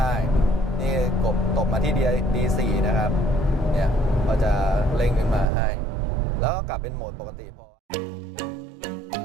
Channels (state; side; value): drops out; left; at 5.5 s